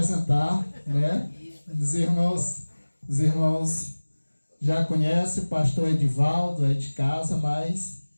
né? Os irmãos já conhecem o pastor Edivaldo, é de casa, mas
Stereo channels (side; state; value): both; inverted; correlation -1.00